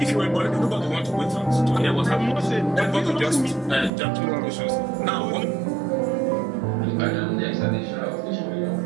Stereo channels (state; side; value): drops out; left; at 3.9 s